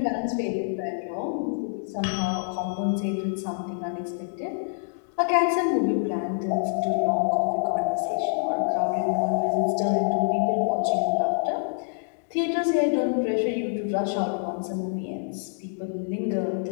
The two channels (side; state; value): right; silent; digital silence